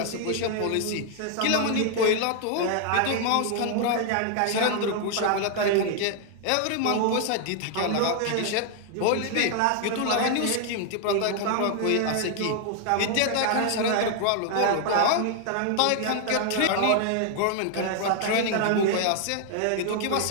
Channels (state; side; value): different; both; correlation 0.00